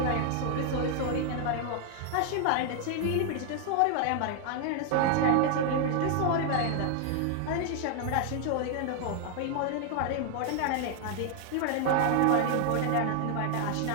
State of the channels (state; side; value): different; both; correlation 0.00